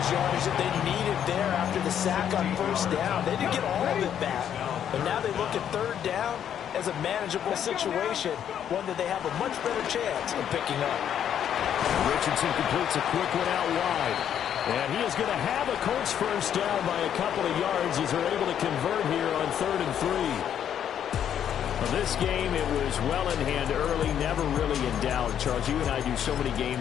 yardage that they needed there after the sack on 1st down. They didn't get all of it back. But now they look at 3rd down as a manageable situation, one that they have a much better chance of picking up. Richardson completes a quick one out wide. And he is going to have a Colts 1st down by a couple of yards as they're able to convert here on 3rd and 3. Well, this game, it was well in hand early, never really in doubt. Charles, you and I do so many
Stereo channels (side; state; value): right; quieter; 9.4 dB